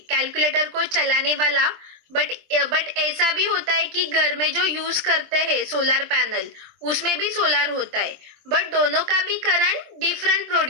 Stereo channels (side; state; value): left; late; 24 ms